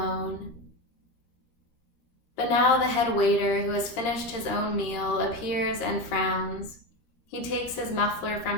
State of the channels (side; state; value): right; late; 13 ms